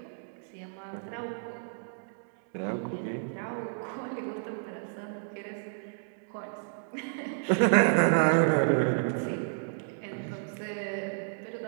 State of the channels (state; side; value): silent; left; digital silence